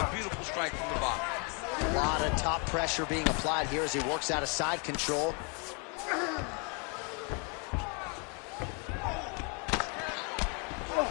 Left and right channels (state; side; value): quieter; right; 35.0 dB